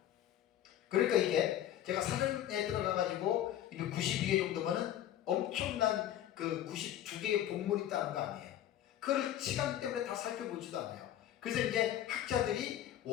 그러니까 이게 제가 사전에 들어가가지고 92개 정도면은 엄청난 그 92개의 본문이 있다는 거 아니에요. 그걸 시간 때문에 다 살펴보지도 않아요. 그래서 이제 학자들이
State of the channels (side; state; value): right; quieter; 11.7 dB